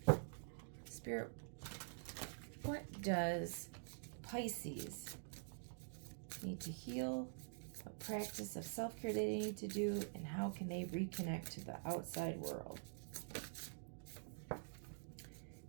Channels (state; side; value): silent; left; digital silence